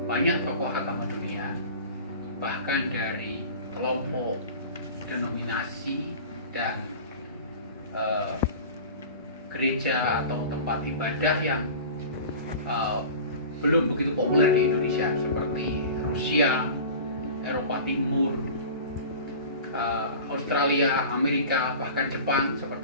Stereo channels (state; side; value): inverted; both; correlation -0.38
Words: banyak tokoh agama dunia, bahkan dari kelompok, denominasi, dan gereja atau tempat ibadah yang belum begitu populer di Indonesia, seperti Rusia, Eropa Timur, Australia, Amerika, bahkan Jepang